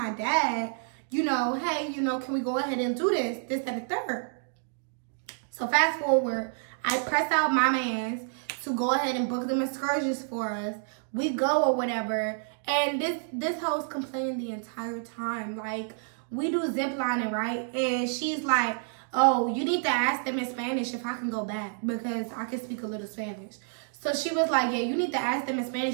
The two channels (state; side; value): silent; left; digital silence